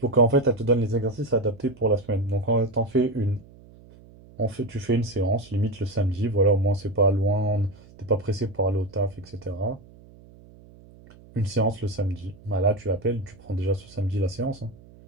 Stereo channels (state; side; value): noise; right; hum, 23 dB below the sound